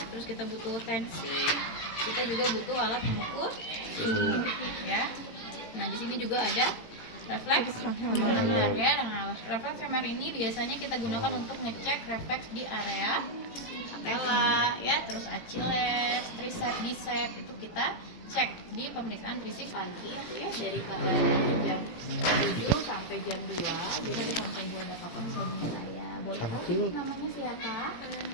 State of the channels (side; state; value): right; late; 18 ms